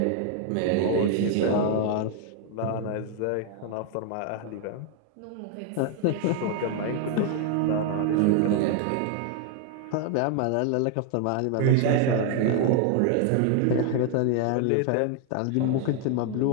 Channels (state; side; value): different; both; correlation 0.00